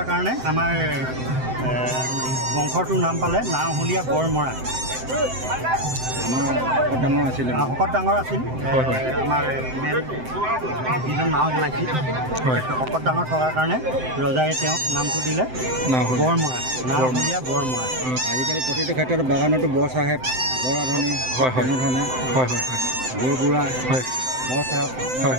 কাৰণে আমাৰ বংশটোৰ নাম পালে নাওহলীয়া বৰমৰা। শকত ডাঙৰ আছিল আমাৰ মেইন যিজন নাও বনাইছিল। শকত ডাঙৰ থকাৰ কাৰণে ৰজাই তেওঁক নামটো দিলে বৰমৰা, নাওহলীয়া বৰমৰা। আজিকালি প্ৰতিটো ক্ষেত্ৰত বাগানতো বৰ চাহেব, বৰ আধুনিক তেনেধৰণে বৰবুঢ়া বৰ চাহেব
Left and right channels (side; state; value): left; late; 7.8 ms